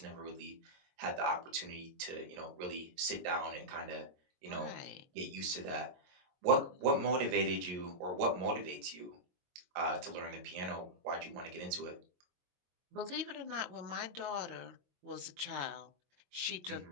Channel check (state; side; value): late; left; 22 ms